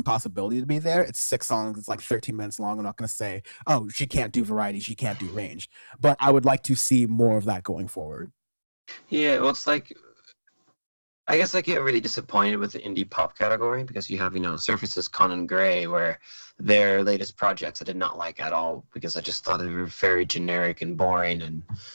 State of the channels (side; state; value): both; inverted; correlation -1.00